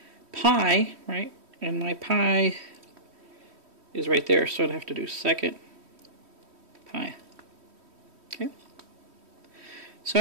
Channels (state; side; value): late; left; 3.1 ms